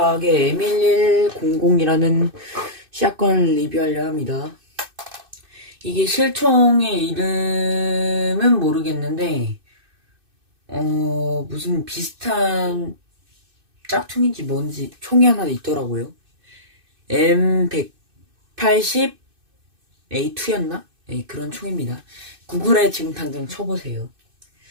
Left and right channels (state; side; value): late; left; 2.6 ms